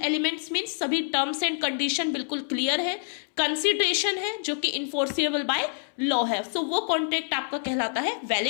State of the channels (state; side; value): silent; right; 60 dB below the other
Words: एलिमेंट्स मींस सभी टर्म्स एंड कंडीशन बिल्कुल क्लियर है, कंसिडरेशन है जो कि इन्फोर्सेबल बाय लॉ है। सो वो कॉन्ट्रैक्ट आपका कहलाता है